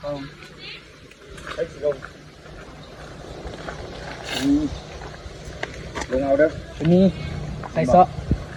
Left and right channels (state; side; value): identical; both; correlation 1.00